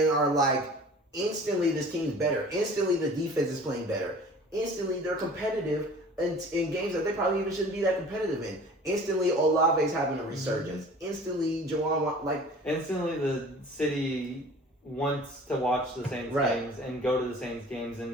are instantly this team's better. Instantly the defense is playing better. Instantly they're competitive in games that they probably even shouldn't be that competitive in. Instantly Olave's having a resurgence. Instantly Jawan Instantly the city wants to watch the Saints games and go to the Saints games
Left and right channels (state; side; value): normal; both; correlation 0.45